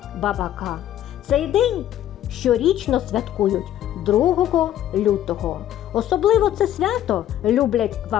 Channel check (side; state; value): right; quieter; 11.9 dB